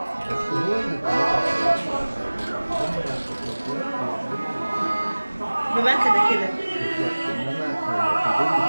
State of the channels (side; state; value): both; inverted; correlation -1.00